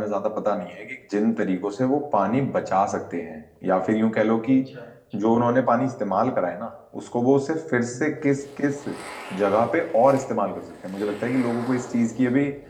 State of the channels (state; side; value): identical; both; correlation 1.00